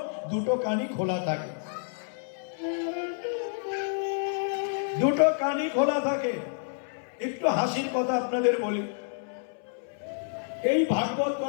দুটো কানই খোলা থাকে, দুটো কানই খোলা থাকে। একটু হাসির কথা আপনাদের বলি, এই ভাগবত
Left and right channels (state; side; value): silent; right; 59 dB below the other